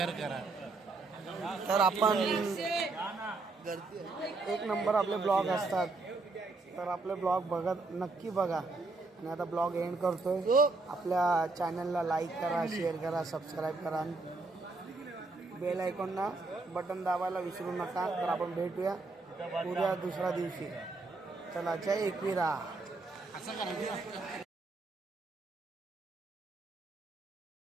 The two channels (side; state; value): left; quieter; 3.5 dB